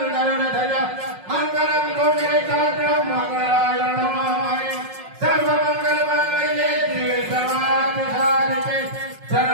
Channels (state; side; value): late; left; 5.5 ms